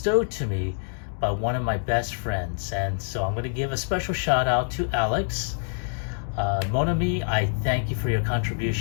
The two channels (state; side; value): silent; right; digital silence